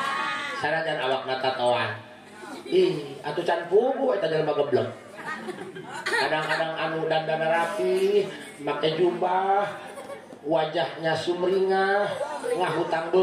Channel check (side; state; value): both; identical; correlation 1.00